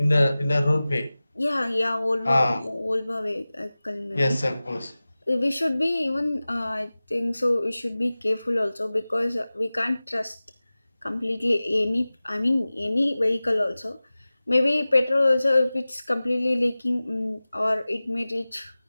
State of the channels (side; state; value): both; inverted; correlation -0.98